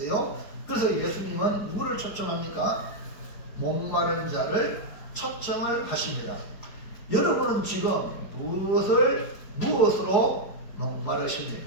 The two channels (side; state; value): right; late; 4.7 ms